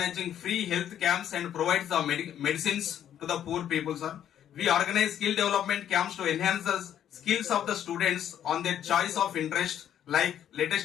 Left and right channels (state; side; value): quieter; right; 10.3 dB